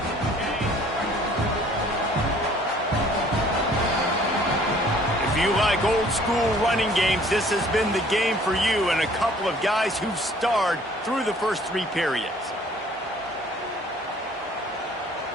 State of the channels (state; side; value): normal; both; correlation 0.56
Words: Old school running games, this has been the game for you and a couple of guys who've starred through the first 3 periods.